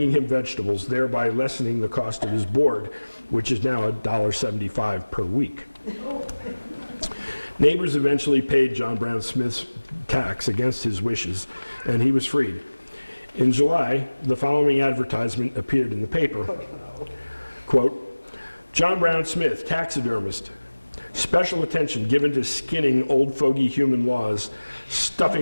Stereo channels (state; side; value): inverted; both; correlation -1.00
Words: him vegetables, thereby lessening the cost of his board, which is now $1.75 per week. Neighbors eventually paid John Brown Smith's tax against his wishes, and he was freed. In July, the following advertisement appeared in the paper. Quote, John Brown Smith, taxidermist. Special attention given to skinning old fogey human laws,